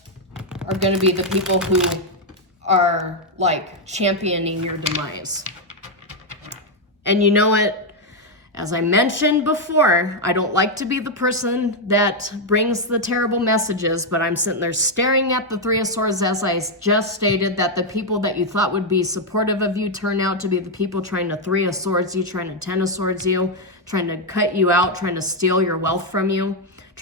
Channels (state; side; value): normal; both; correlation 0.02